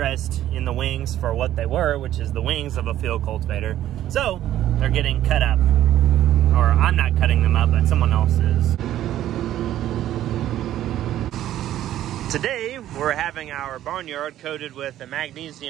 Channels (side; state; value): left; quieter; 12.7 dB